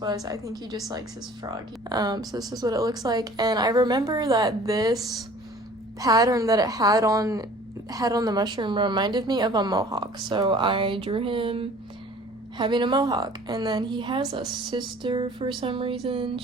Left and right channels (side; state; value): both; normal; correlation 0.49